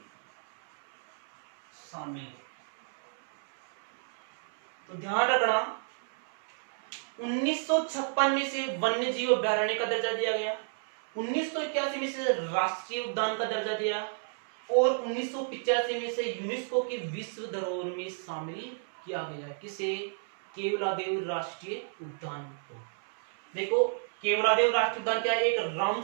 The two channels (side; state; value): left; silent; 57 dB below the other